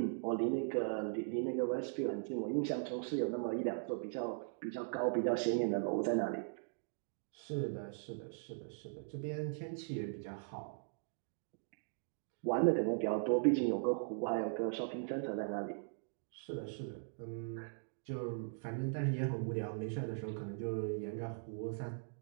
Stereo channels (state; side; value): silent; left; digital silence